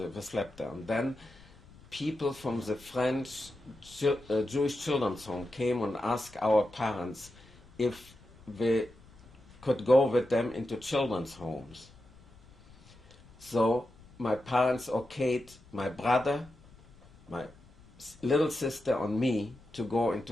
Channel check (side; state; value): left; noise; rumble, 24 dB below the sound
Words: we slept there. And then people from the French Jewish Children's Home came and asked our parents if we could go with them into children's homes. So my parents okayed my brother, my little sister, and me to go